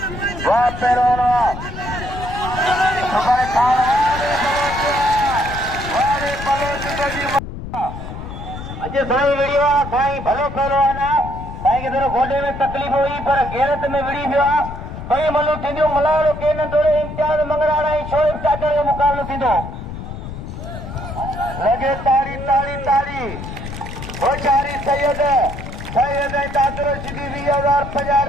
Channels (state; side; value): noise; left; rumble, 9 dB below the sound